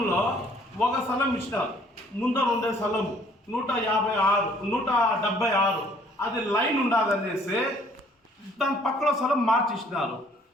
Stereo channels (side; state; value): both; normal; correlation 0.59